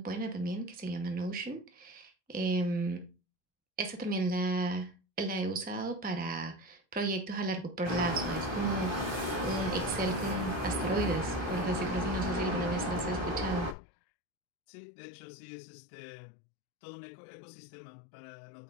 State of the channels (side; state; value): right; drops out; at 13.8 s